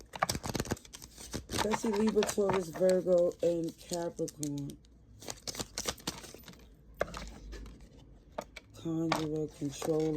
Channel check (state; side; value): identical; both; correlation 1.00